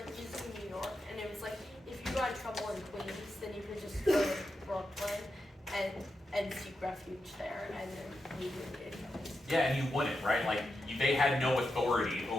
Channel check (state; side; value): normal; both; correlation 0.88